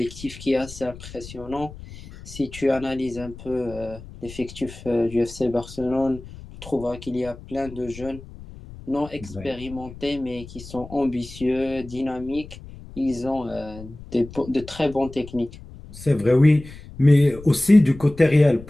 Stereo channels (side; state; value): left; noise; rumble, 16 dB below the sound